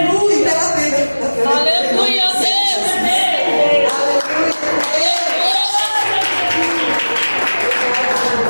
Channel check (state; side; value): inverted; both; correlation -1.00